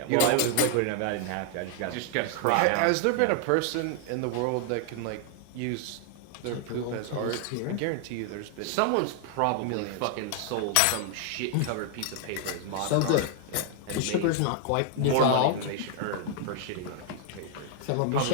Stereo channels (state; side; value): different; both; correlation 0.00